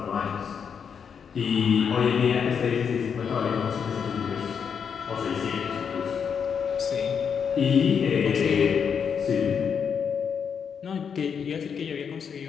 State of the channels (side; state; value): right; quieter; 6.9 dB